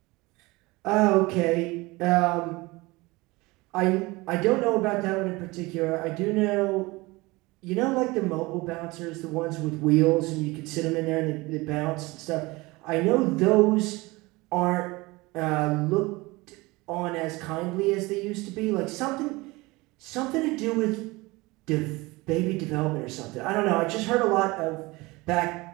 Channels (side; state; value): left; quieter; 22.6 dB